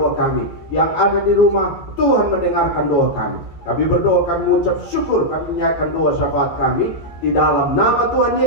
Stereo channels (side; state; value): right; late; 14 ms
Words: kami. Yang ada di rumah Tuhan mendengarkan doa kami. Kami berdoa, kami mengucap syukur, kami menyatakan doa syafaat kami di dalam nama Tuhan